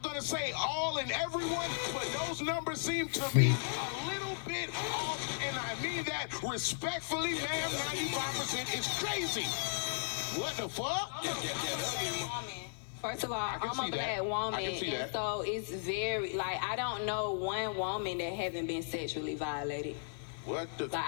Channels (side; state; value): right; silent; 54 dB below the other